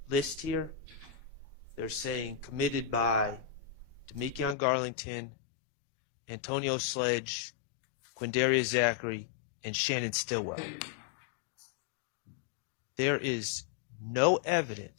list here, they're saying committed by Demekion Garlington, Antonio Sledge, Quindaria Zachary, and Shannon Stillwell. There is no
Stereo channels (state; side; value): drops out; right; at 4.5 s